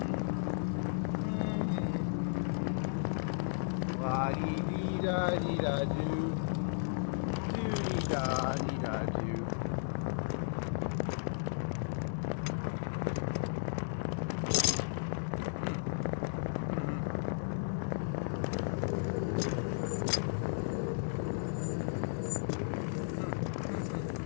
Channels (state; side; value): silent; right; digital silence